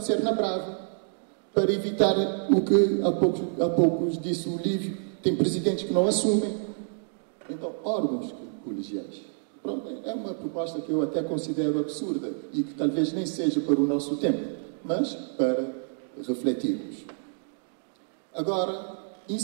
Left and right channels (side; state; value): left; silent; digital silence